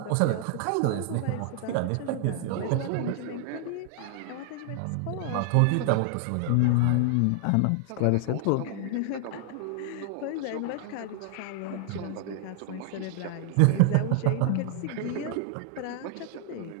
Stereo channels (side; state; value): both; different; correlation 0.00